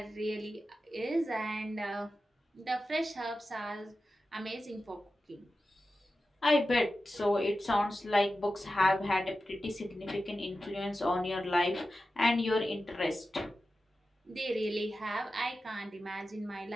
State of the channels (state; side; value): normal; both; correlation 0.93